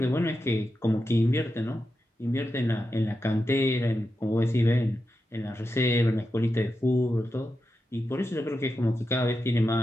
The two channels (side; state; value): both; normal; correlation 0.89